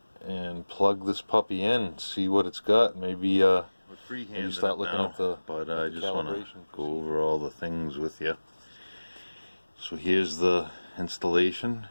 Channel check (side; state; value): both; inverted; correlation -1.00